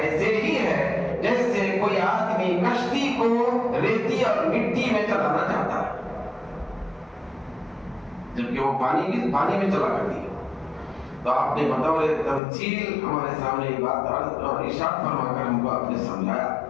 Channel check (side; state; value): right; drops out; at 12.4 s